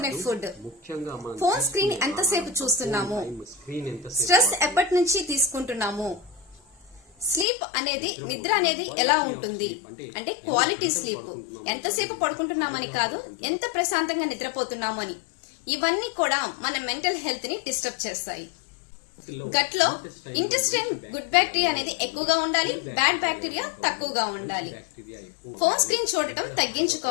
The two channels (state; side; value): drops out; right; at 7.5 s